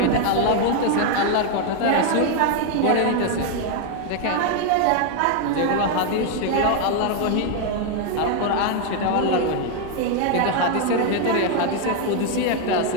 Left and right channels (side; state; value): both; different; correlation 0.01